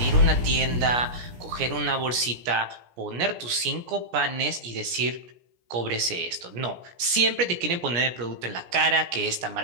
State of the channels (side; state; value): left; late; 17 ms